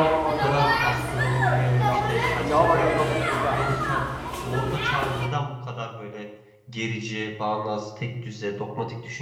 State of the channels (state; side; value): identical; both; correlation 1.00